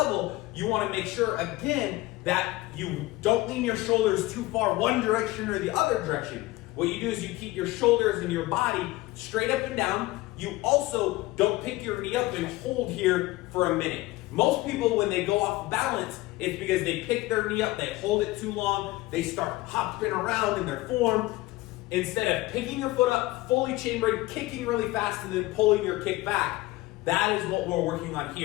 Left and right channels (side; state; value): right; quieter; 19.2 dB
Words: you want to make sure, again, that you don't lean your shoulders too far one direction or the other direction. What you do is you keep your shoulders and your body straight up and down. You also don't pick your knee up and hold here for a minute. Most people, when they go off balance, it's because they pick their knee up, they hold it too long, they start hopping around in their form. Instead of picking your foot up, fully chambered, kicking really fast, and then pulling your kick back, that is what we're working on